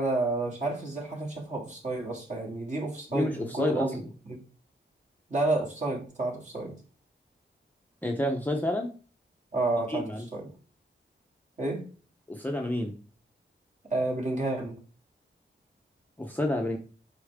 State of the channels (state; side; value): normal; both; correlation 0.71